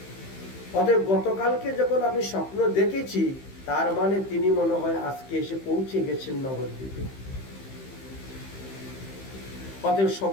অতএব গতকালকে যখন আমি স্বপ্ন দেখেছি, তার মানে তিনি মনে হয় আজকে এসে পৌঁছে গেছেন নবদ্বীপে। অতএব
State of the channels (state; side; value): late; right; 15 ms